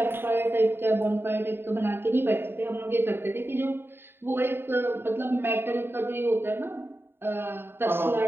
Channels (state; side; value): late; left; 0.11 ms